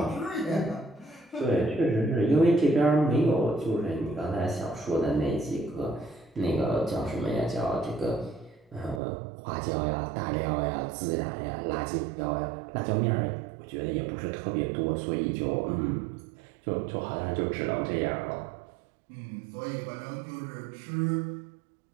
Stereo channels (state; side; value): drops out; left; at 9.0 s